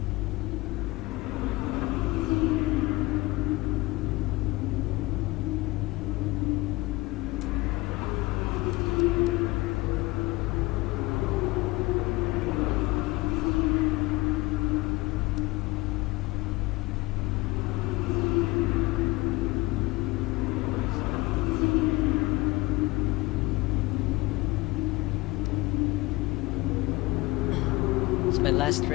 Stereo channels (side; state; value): right; quieter; 21.7 dB